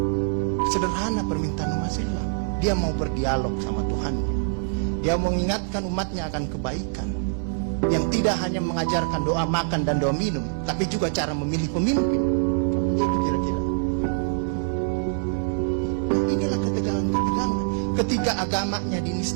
Sederhana permintaan umat Islam. Dia mau berdialog sama Tuhannya. Dia mau mengingatkan umatnya akan kebaikan, yang tidak hanya mengajarkan doa makan dan doa minum, tapi juga cara memilih pemimpin. Itu kira-kira. Inilah ketegangan-ketegangan. Ketika agamanya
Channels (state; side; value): silent; left; digital silence